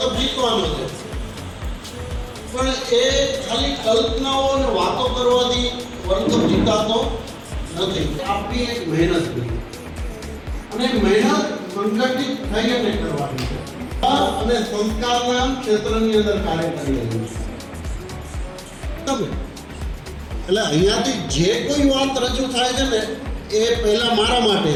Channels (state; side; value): identical; both; correlation 1.00